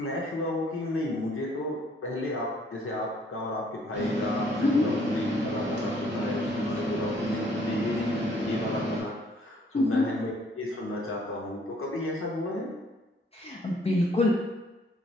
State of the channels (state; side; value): normal; both; correlation 0.62